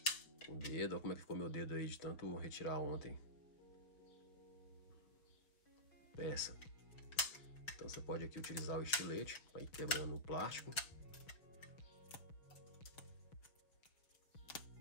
com o dedo. Olha como é que ficou meu dedo aí de tanto retirar ontem. Peça. Então você pode aqui utilizar o estilete para ir quebrando o plástico.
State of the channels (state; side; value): late; right; 5.9 ms